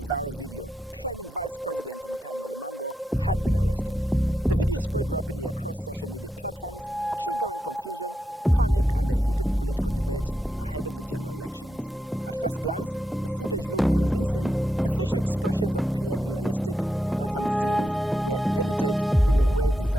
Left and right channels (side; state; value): both; normal; correlation 0.86